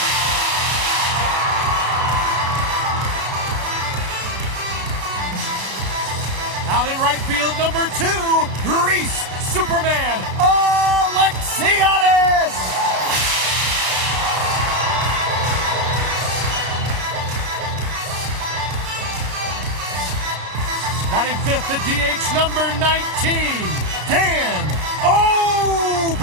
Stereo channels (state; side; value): late; left; 33 ms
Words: Out in right field, number 2, Reese Superman Alexiadis. Batting fifth, the DH, number 19, Dan